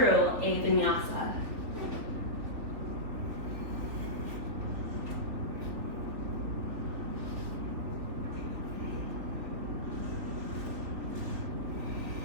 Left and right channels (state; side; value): late; left; 3.4 ms